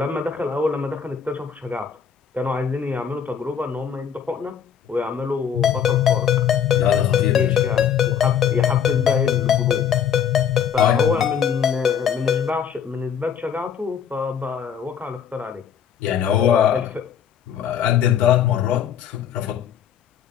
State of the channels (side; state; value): right; quieter; 8.1 dB